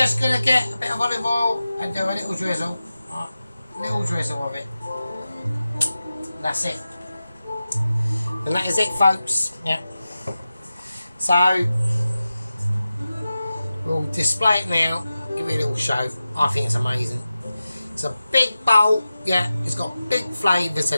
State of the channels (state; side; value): inverted; both; correlation -0.94